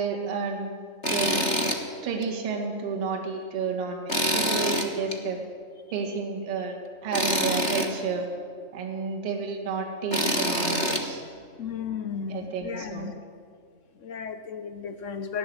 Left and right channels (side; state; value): right; late; 3.3 ms